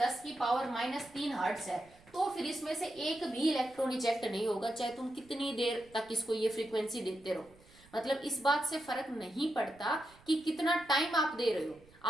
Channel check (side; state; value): right; noise; rumble, 27 dB below the sound